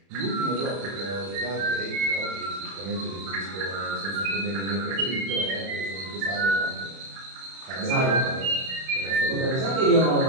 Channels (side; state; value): left; late; 31 ms